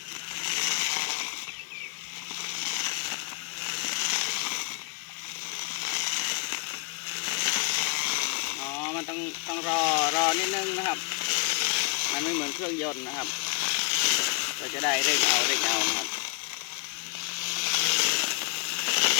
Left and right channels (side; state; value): right; quieter; 32.5 dB